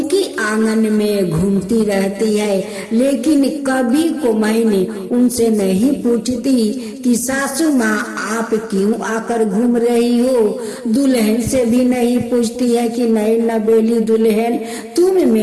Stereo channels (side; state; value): both; identical; correlation 1.00